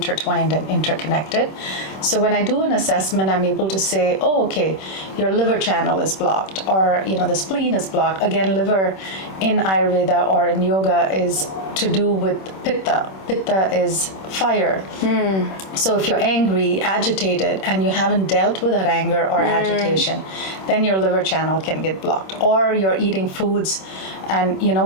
and interconnected. So when I do an assessment, I'm able to say, oh, okay, your liver channel is blocked, or the spleen is blocked. Again, liver in Ayurveda or in yoga is to do with pitta. Pitta is fire. So if you're angry, agitated, and you haven't dealt with that anger or agitation, then your liver channel can get blocked. Or you're eating foods and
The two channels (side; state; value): right; late; 26 ms